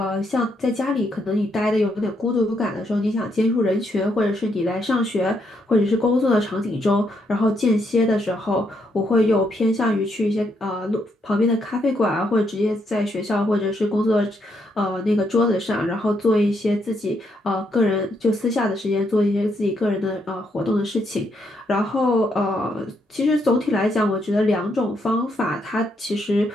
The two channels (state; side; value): normal; both; correlation 0.76